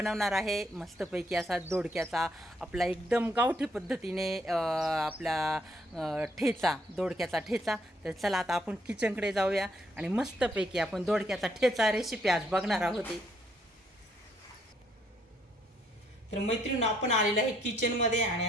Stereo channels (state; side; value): normal; both; correlation 0.71